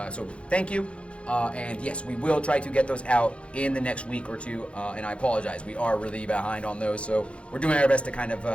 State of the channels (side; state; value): right; late; 0.060 ms